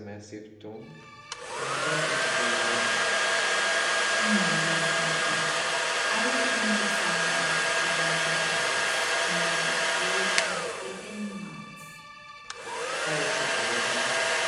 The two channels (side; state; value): both; identical; correlation 1.00